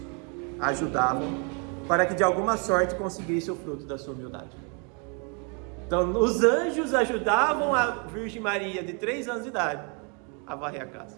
ajudavam para que de alguma sorte conseguisse o fruto da sua humildade. Então os anjos ajudavam a Virgem Maria de 3 anos de idade a varrer a casa.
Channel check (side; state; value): left; quieter; 36.1 dB